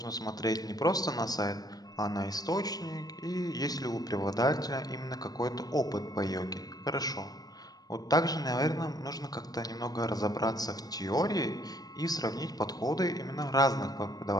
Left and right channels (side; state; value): right; late; 0.19 ms